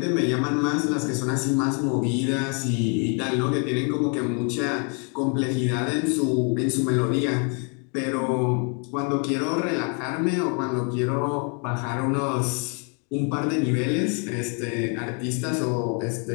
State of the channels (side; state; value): right; quieter; 37.2 dB